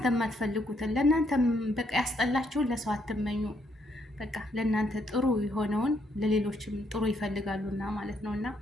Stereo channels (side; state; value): both; normal; correlation 0.73